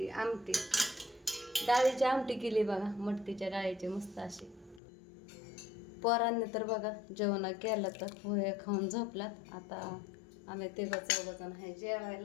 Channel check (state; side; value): drops out; right; at 4.8 s